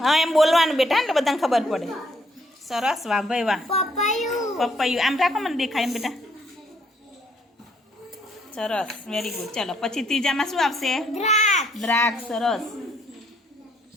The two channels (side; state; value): both; normal; correlation 0.69